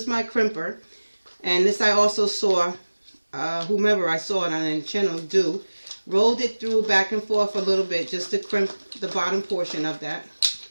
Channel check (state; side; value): inverted; both; correlation -1.00